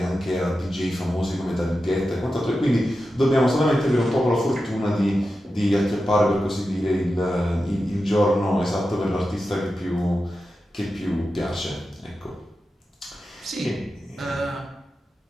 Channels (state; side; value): normal; both; correlation 0.91